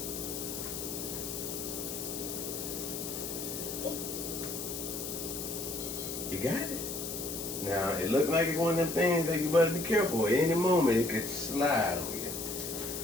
You got it. Now, it looked like it's one of them things that you better be careful. At any moment, it could slide on you.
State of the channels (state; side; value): noise; left; hiss, 6 dB below the sound